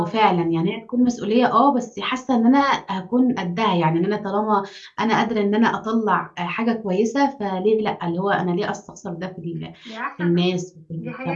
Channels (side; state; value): both; identical; correlation 1.00